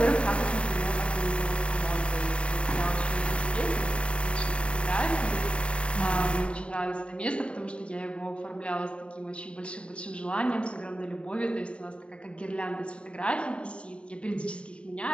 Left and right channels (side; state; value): right; late; 0.058 ms